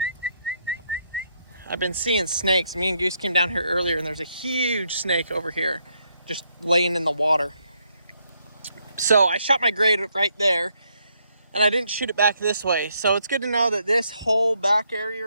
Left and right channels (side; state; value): both; inverted; correlation -0.75